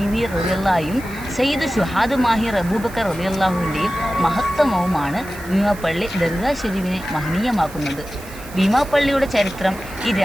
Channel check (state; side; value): noise; right; hiss, 19 dB below the sound